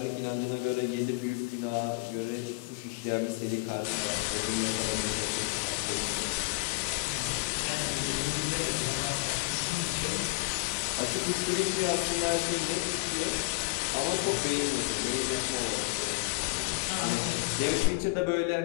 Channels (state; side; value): quieter; right; 25.0 dB